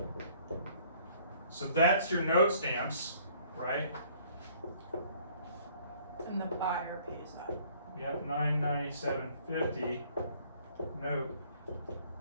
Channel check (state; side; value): inverted; both; correlation -0.58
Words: So that's your note stamps, right? And the buyer pays that. Yep, $997.50 note